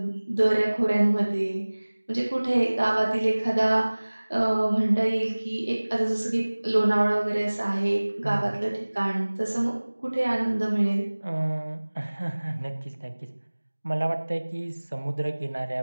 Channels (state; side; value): inverted; both; correlation -1.00